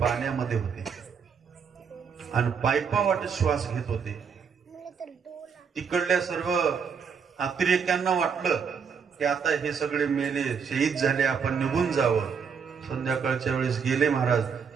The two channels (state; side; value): quieter; left; 6.4 dB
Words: होते आणि पायपावाटे श्वास घेत होते. तिकडल्या सर्व अतिरेक्यांना वाटलं की आता हे सगळे मेले, शहीद झाले, आपण निघून जावं. संध्याकाळच्या वेळेस गेले महाराज,